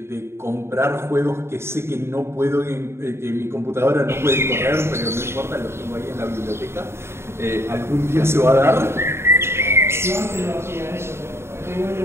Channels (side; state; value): left; late; 0.12 ms